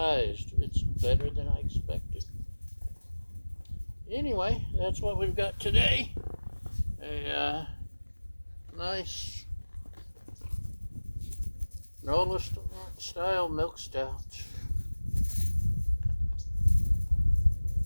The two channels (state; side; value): inverted; both; correlation -1.00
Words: it's better than I expected. Anyway, that's what we've got today. A nice NOLA style milk stout.